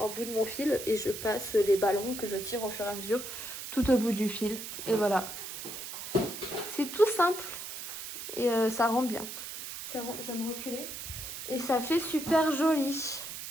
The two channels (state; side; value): noise; right; hiss, 8 dB below the sound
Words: bout de mon fil et je passe les ballons que je tire au fur et à mesure tout au bout du fil. Et voilà. C'est tout simple et ça rend bien. Je vais me reculer. Et ça fait super joli.